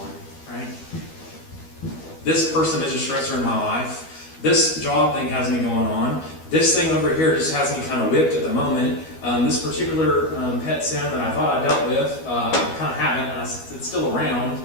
right? This person is a stressor in my life. This job thing has me going on. This thing over here just has me kind of whipped at the moment. This particular pet sin that I thought I dealt with, I kind of haven't. It's still around.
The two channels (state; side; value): late; right; 12 ms